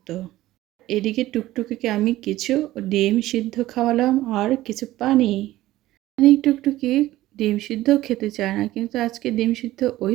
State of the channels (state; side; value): quieter; left; 15.9 dB